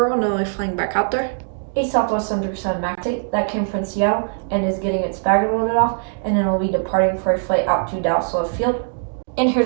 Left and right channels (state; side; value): silent; left; digital silence